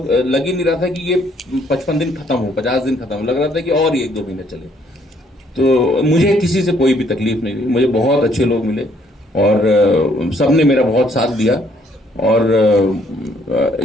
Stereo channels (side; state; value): both; normal; correlation 0.66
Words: ही नहीं रहा था कि ये 55 दिन खत्म हो, 50 दिन खत्म हो, लग रहा था कि और ही 1-2 महीने चले। तो मुझे किसी से कोई भी तकलीफ नहीं हुई, मुझे बहुत अच्छे लोग मिले और सबने मेरा बहुत साथ दिया। और